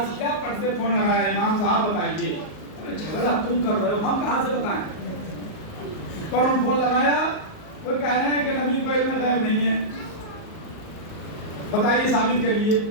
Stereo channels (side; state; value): right; late; 38 ms